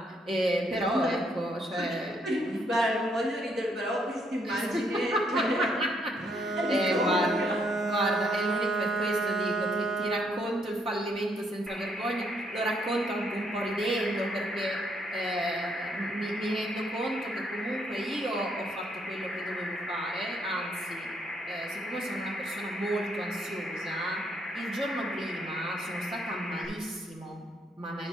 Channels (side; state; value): both; normal; correlation 0.72